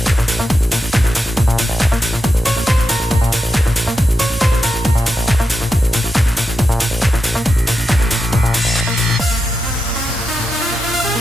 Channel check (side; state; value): both; normal; correlation 0.88